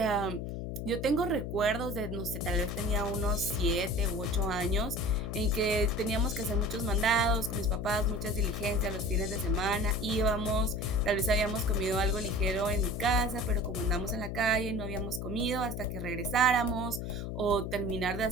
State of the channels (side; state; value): left; noise; hum, 5 dB below the sound